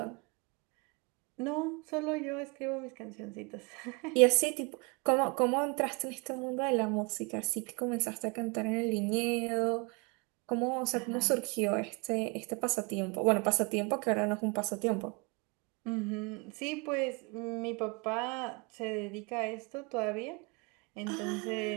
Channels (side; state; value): left; quieter; 30.3 dB